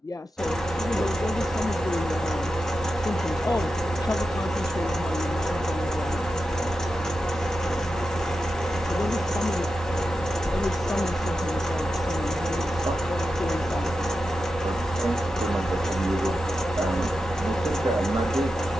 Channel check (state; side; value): normal; both; correlation 0.90